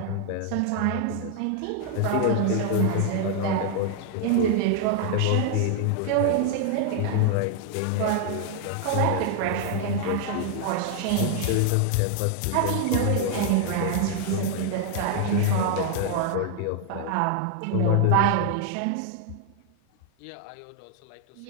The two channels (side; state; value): both; different; correlation 0.00